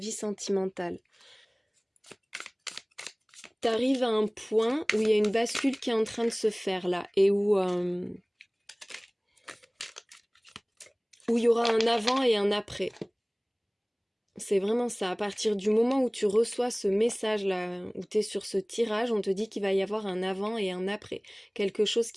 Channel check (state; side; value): identical; both; correlation 1.00